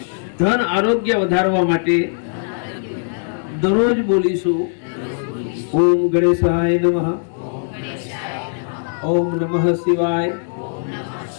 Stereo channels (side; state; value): right; silent; digital silence